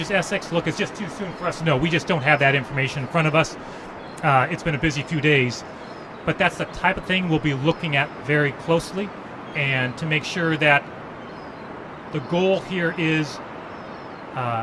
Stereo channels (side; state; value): both; identical; correlation 1.00